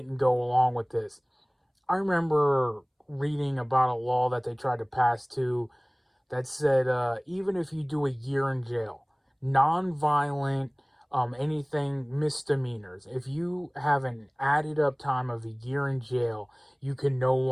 go along with this. I remember reading about a law that they tried to pass too, that said even if you do a year in jail, non-violent, anything misdemeanors, if you have an added up time of a year in jail, you can no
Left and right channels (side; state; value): both; identical; correlation 1.00